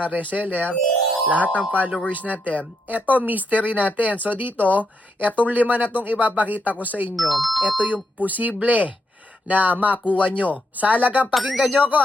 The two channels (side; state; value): both; normal; correlation 0.80